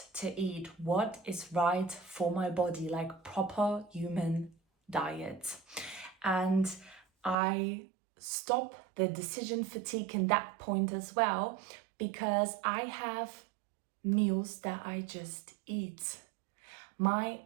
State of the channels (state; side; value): drops out; left; at 7.4 s